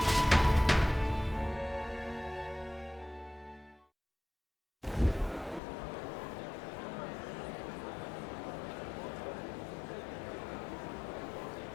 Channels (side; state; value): right; drops out; at 5.6 s